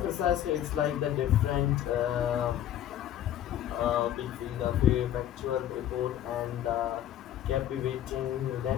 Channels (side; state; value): right; quieter; 11.5 dB